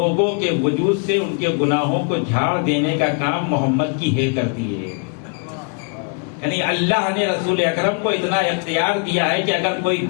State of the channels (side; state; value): right; quieter; 37.3 dB